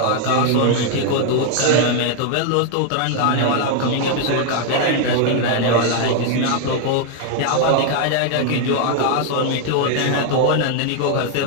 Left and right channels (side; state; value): both; different; correlation 0.00